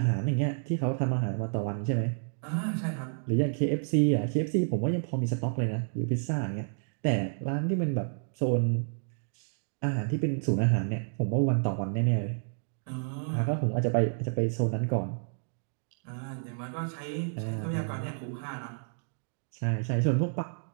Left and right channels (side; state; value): left; silent; digital silence